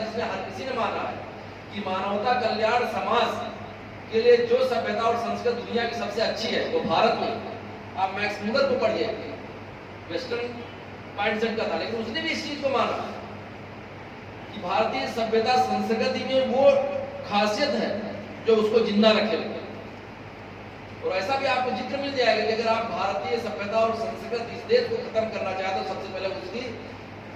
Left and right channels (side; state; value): both; identical; correlation 1.00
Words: जिसमें हर किसी ने माना है कि मानवता कल्याण समाज के लिए जो सभ्यता और संस्कृति दुनिया की सबसे अच्छी है वो भारत में। आप मैक्स मुलर को पढ़िए, वेस्टर्न माइंडसेट का था, लेकिन उसने भी इस चीज को माना कि भारतीय सभ्यता संस्कृति में वो खासियत है जो उसको जिंदा रखे हुए। और ऐसा भी आपको जिक्र मिल जाएगा कि अगर आप भारतीय सभ्यता और संस्कृति इस देश को खत्म करना चाहते हो, सबसे पहले उसकी